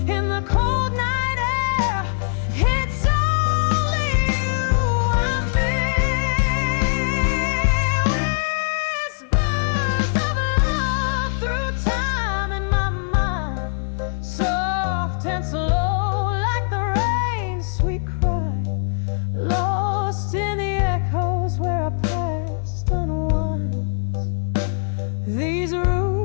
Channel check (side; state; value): right; silent; digital silence